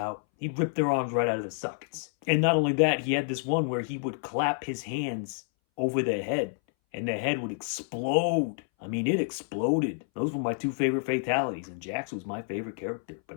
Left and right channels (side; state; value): right; silent; 59 dB below the other